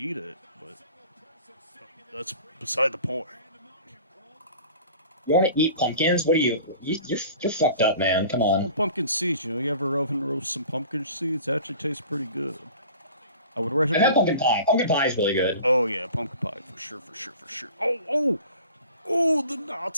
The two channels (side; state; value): both; inverted; correlation -0.44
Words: it, but that's beside the point. You want to eat pumpkins? What are you? You're fucked up, man. Come on. Well, pumpkin seeds. You ever oven roast some pumpkin seeds? It actually tastes pretty good. I would recommend. I have pumpkin pie. Pumpkin pie is really good. Oh yeah, pumpkin pie for sure. Oh, the